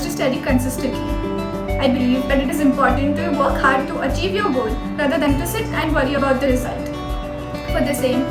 study consistently. I believe that it is important to work hard to achieve your goal rather than to sit and worry about the result. For the same,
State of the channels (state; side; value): identical; both; correlation 1.00